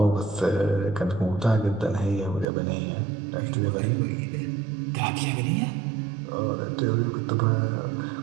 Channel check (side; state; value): left; drops out; at 2.5 s